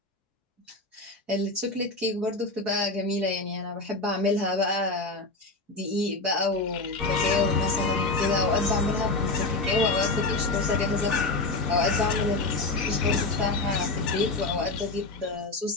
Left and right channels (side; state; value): right; quieter; 3.2 dB